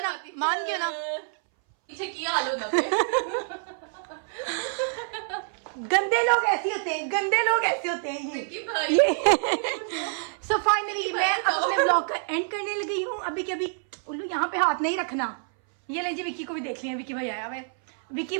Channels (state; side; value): silent; left; 60 dB below the other